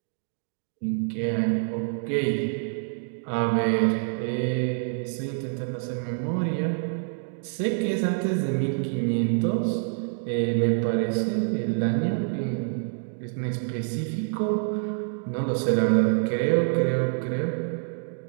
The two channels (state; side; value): silent; left; digital silence